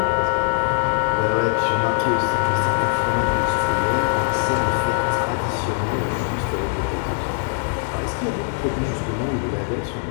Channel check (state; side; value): silent; right; digital silence